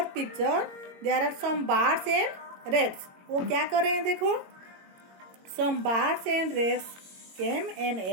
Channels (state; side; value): late; left; 22 ms